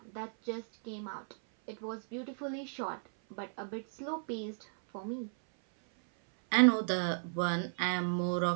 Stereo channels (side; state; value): left; silent; 55 dB below the other